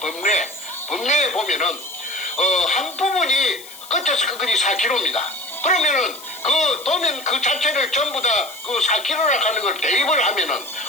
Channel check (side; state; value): left; noise; hiss, 17 dB below the sound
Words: 보면은 한 부분이 끝에서 끝까지 4km입니다. 그러면은 그 도면 그 자체를 전부 다 그 4km라 하는 걸 대입을 하면은